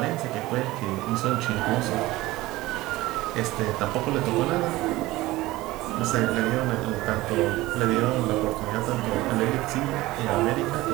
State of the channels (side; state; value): left; quieter; 18.6 dB